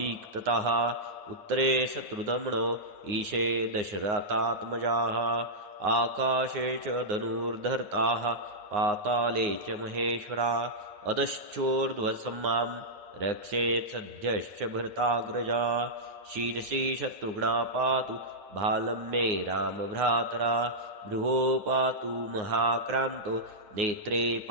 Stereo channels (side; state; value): left; late; 9.6 ms